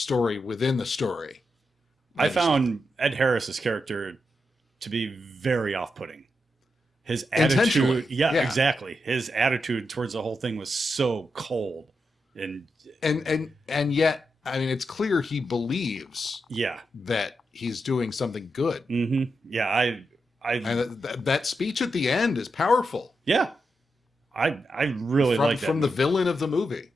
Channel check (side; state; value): both; normal; correlation 0.86